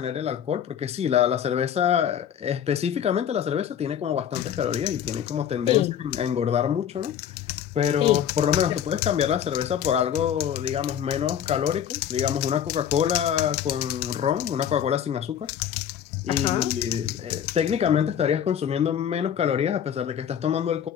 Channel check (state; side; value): quieter; right; 9.3 dB